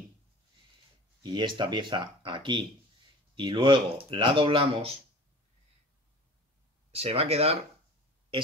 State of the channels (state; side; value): normal; both; correlation 0.41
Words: y esta pieza aquí y luego la doblamos, se va a quedar